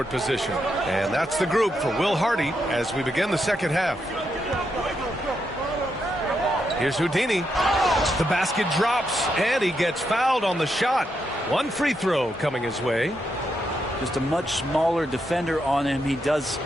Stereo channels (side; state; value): both; normal; correlation 0.82